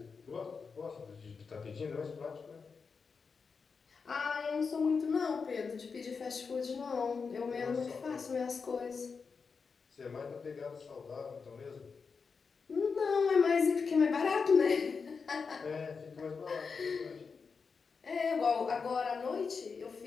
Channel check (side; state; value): right; quieter; 5.3 dB